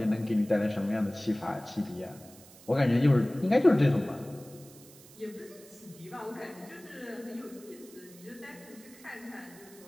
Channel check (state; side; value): noise; right; hiss, 21 dB below the sound